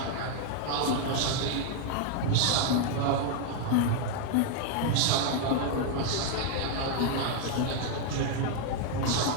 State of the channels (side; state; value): both; different; correlation 0.00